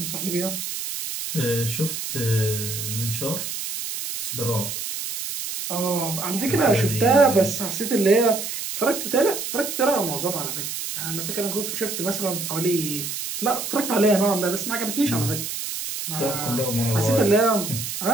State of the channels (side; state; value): right; noise; hiss, 5 dB below the sound